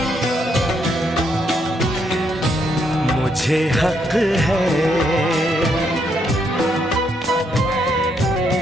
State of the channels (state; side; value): normal; both; correlation 0.75